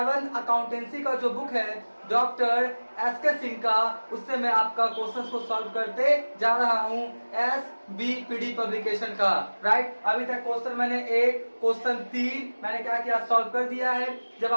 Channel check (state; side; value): inverted; both; correlation -1.00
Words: अकाउंटेंसी का जो बुक है डॉक्टर एस के सिंह का, उससे मैं आपका क्वेश्चंस को सॉल्व करते जा रहा हूं SBPD पब्लिकेशन का। राइट, अभी तक क्वेश्चन मैंने क्वेश्चन 3 मैंने क्या किया, सॉल्व कर दिया है। जब